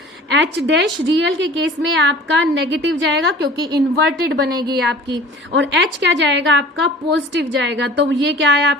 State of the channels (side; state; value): both; normal; correlation 0.43